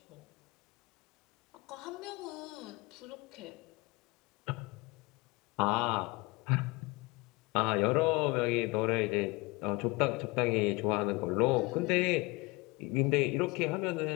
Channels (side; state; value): right; quieter; 24.2 dB